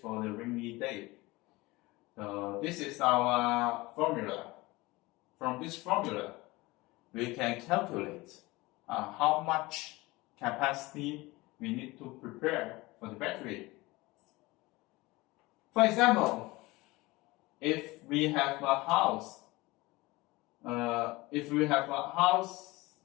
the rainy day. So this is our formula. From this formula, we can calculate how much capacity we need to prepare for the battery. For example, if we have a house,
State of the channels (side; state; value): right; quieter; 21.5 dB